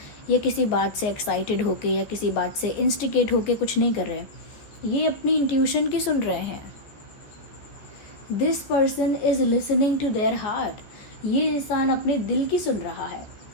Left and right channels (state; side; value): late; right; 14 ms